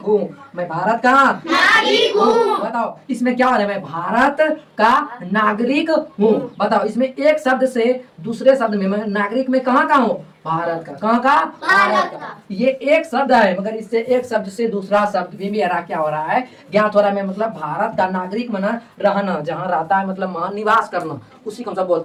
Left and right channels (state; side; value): identical; both; correlation 1.00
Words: हूँ। मैं भारत का नागरिक हूँ। बताओ इसमें क्या हो रहा है? मैं भारत का नागरिक हूँ। बताओ इसमें एक शब्द से दूसरे शब्द में, मैं नागरिक में कहाँ का हूँ? भारत का। कहाँ का? भारत का। ये एक शब्द है, मगर इससे एक शब्द से दूसरा शब्द भी मेरा क्या हो रहा है? ज्ञात हो रहा है। मतलब भारत का नागरिक मना रहना, जहाँ रहता है, मतलब वहाँ निवास करना, उसी को हम सब